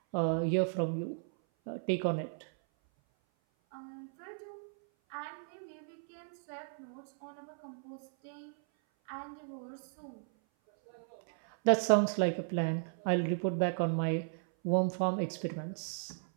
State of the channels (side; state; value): left; silent; 54 dB below the other